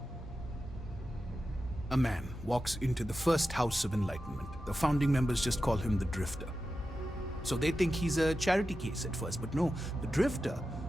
A man walks into the first House of Enlightenment. The founding members just call him the Drifter. So they think he's a charity case at first, but no, the Drifter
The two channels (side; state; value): both; normal; correlation 0.92